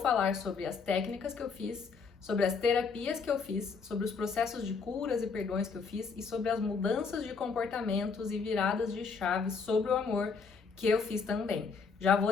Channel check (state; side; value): quieter; right; 5.2 dB